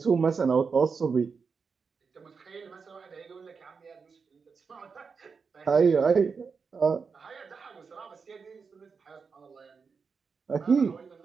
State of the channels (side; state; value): left; quieter; 5.4 dB